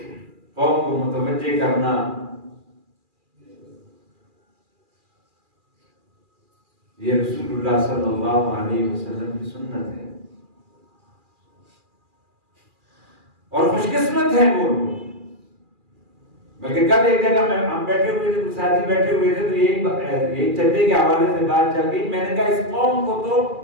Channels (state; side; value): late; left; 2.4 ms